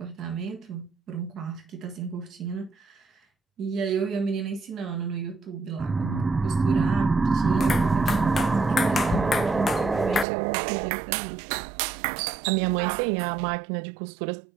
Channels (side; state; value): left; drops out; at 10.2 s